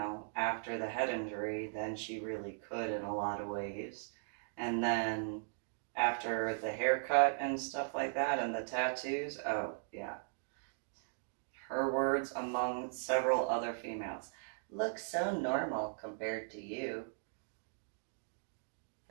after the head injury, then she really could in a lot of ways. And then after the haircut and stuff like that and the tattoos, oh, yeah. Her words among several other females. Look so normal compared to you.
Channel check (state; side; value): silent; left; digital silence